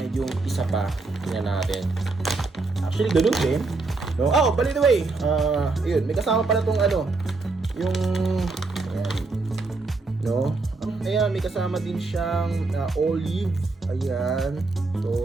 yung isa pa, tingnan natin. Actually, ganun din. No? Oh, by the way, yun, may kasama pala tong yung, ayan, no? Ayan, may kasama din siyang olive. Ayan.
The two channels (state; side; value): quieter; left; 3.6 dB